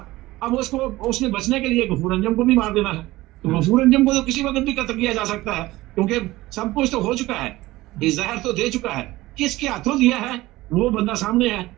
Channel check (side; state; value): left; quieter; 18.3 dB